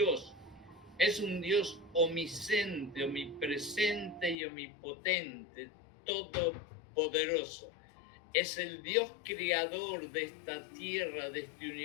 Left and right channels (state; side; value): drops out; right; at 4.4 s